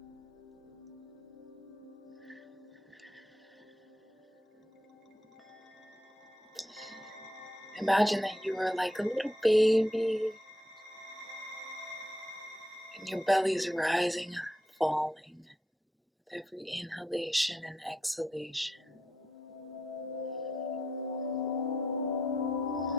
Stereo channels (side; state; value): both; normal; correlation 0.81